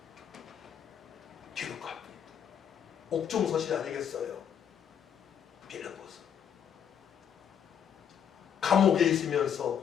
기록합니다. 옥중서실 아니겠어요? 빌립보서. 감옥에 있으면서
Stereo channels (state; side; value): quieter; right; 8.4 dB